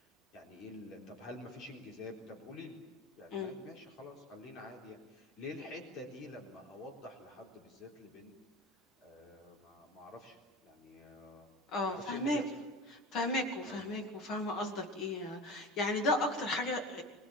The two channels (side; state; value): both; normal; correlation 0.32